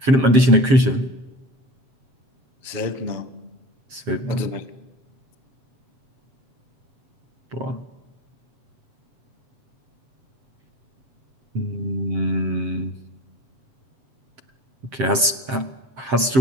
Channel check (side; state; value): left; late; 7.6 ms